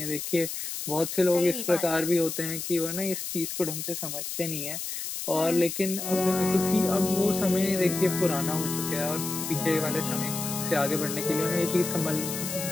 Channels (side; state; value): left; noise; hiss, 5 dB below the sound